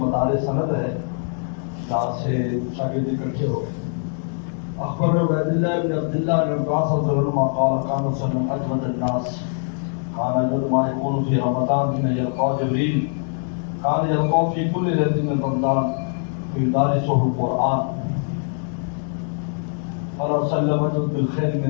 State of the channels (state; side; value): silent; right; 56 dB below the other